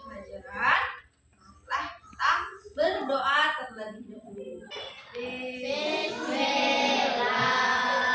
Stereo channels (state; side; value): identical; both; correlation 1.00